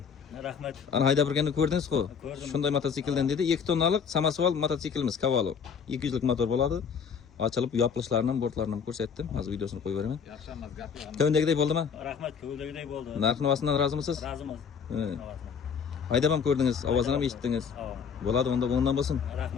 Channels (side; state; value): right; quieter; 6.6 dB